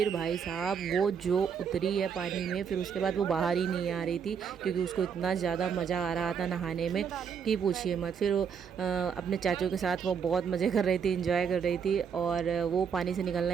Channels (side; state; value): left; quieter; 6.9 dB